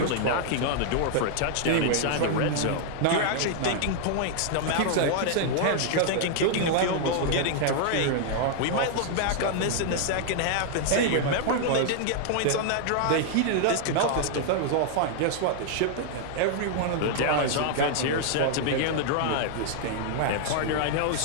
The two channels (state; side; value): different; both; correlation 0.00